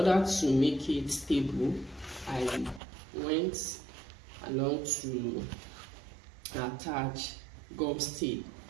to make it stable, I went along to attach gum tape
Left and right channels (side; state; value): left; drops out; at 2.8 s